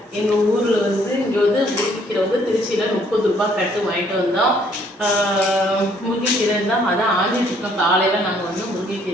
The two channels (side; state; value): both; normal; correlation 0.64